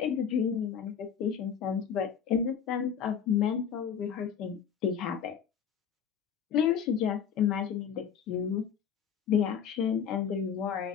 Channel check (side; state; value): right; quieter; 7.7 dB